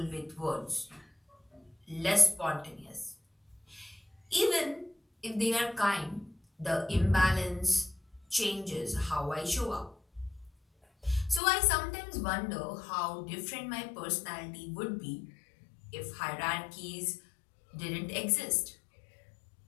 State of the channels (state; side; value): drops out; right; at 11.4 s